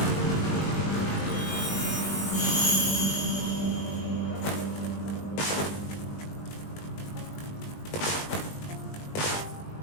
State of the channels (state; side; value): late; right; 20 ms